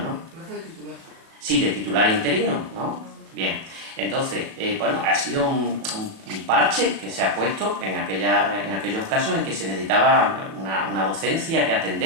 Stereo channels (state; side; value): late; left; 37 ms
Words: Plaza de titular. Sí, de titular interino, ¿no? Bien. Entonces, bueno, ha sido un parche que se ha puesto en aquellos casos en que se necesitaba una docencia que